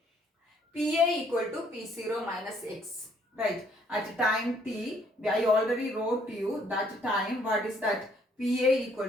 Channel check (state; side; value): normal; both; correlation 0.65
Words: PA equal to P0 minus X. Right? At time t, I already wrote to you that time, what is that? PA equal